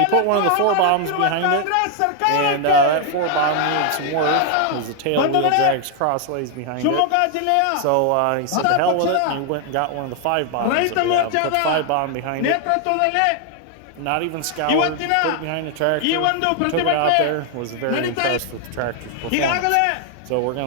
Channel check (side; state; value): both; different; correlation 0.00